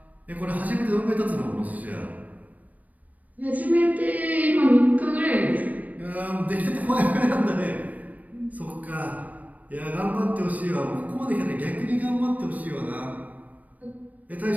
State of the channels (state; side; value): late; left; 0.075 ms